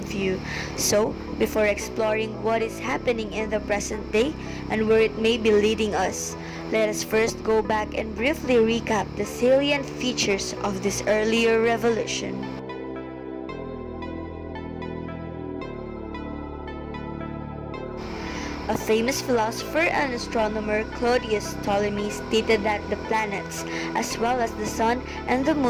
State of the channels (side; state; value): both; identical; correlation 1.00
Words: So, before exploring what is happening in the present day and where it may be leading us, let us first go back and briefly recap the salient features of this earlier revolution. A famous philosopher and astronomer, Claudius Ptolemy, stated that the planets, as well as the sun and the